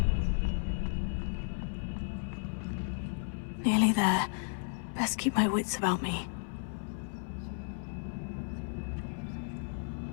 Nearly there. Best keep my wits about me.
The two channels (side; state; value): right; silent; 55 dB below the other